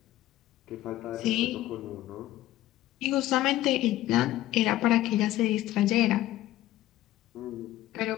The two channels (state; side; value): quieter; right; 14.8 dB